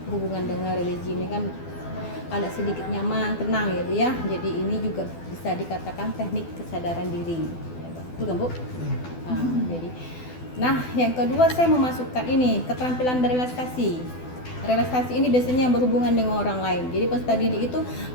hubungan dengan religi ini kan ada sedikit nyaman, tenang ya Bu ya. Jadi ini juga bisa dikatakan teknik kesadaran diri. Ya, betul kan Bu? Nah, yang kedua saya memasukkan ini keterampilan berrelaksasi. Relasasi ini biasanya berhubungan dengan orang lain. Jadi peserta didik itu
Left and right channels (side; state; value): right; late; 12 ms